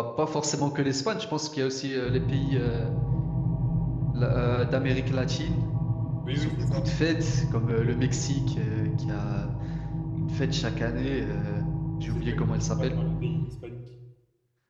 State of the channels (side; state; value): both; identical; correlation 1.00